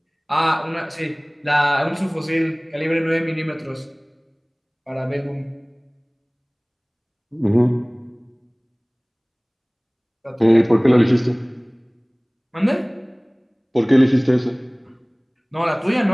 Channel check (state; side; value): identical; both; correlation 1.00